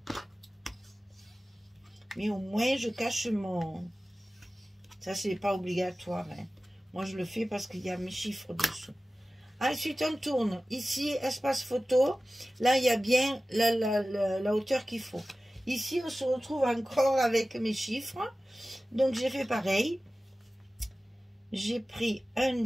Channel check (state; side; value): normal; both; correlation 0.96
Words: Mais au moins je cache mon... Ça c'est pas obligatoire. Hein. Moi je le fais parce qu'il y a mes chiffres dessous. Ensuite on tourne. Ici espace photo. Là il y a bien la hauteur qu'il faut. Ici on se retrouve encore avec mes chiffres. Donc j'ai fait pareil. J'ai pris un